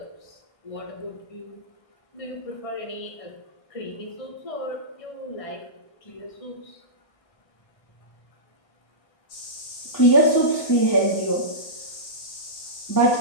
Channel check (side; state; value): right; late; 1.3 ms